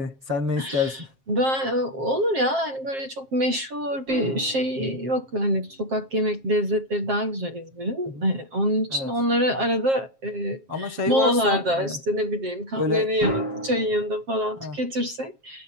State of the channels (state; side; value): late; left; 7.5 ms